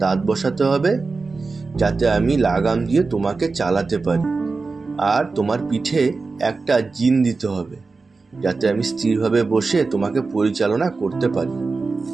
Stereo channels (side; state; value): left; quieter; 4.0 dB